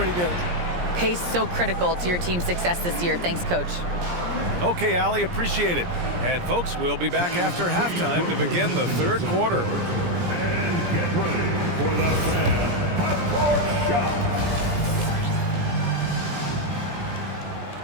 good. Pace so critical to your team's success this year. Thanks, Coach. Okay, Allie, appreciate it. And folks, we'll be back after halftime to begin the third quarter. And get ready for the fan half-court shot.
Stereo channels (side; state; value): left; late; 17 ms